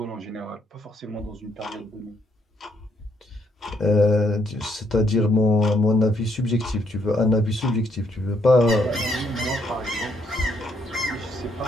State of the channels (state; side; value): normal; both; correlation 0.72